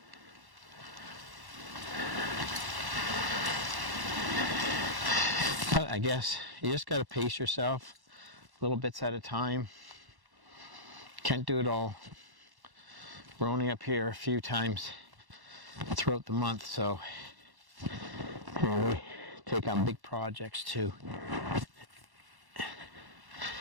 But I guess you just got to pace yourself little bits at a time. Can't do it all. We're only up here a few times throughout the month, so we take on big projects too. We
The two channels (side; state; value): left; late; 1.1 ms